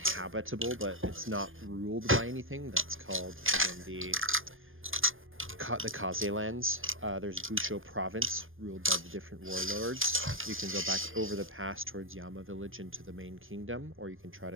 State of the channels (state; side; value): late; left; 0.59 ms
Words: but it's not ruled by anything. That's called again the Kaze lands. There's Busho Province, ruled by the different warlords. You can go back over the pass towards Yama Village into the main kingdom, or you can try